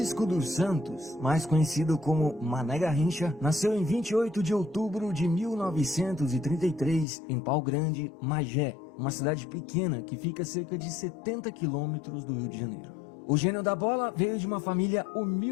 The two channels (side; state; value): right; drops out; at 7.1 s